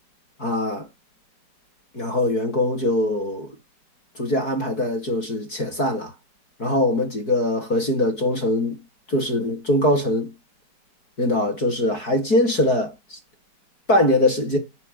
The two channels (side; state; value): right; late; 4.6 ms